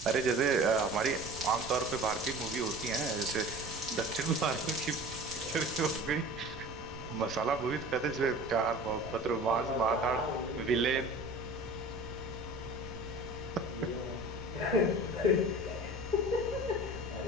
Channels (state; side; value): noise; right; rumble, 14 dB below the sound